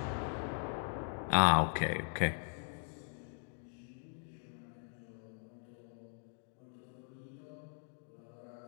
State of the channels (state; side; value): silent; right; 51 dB below the other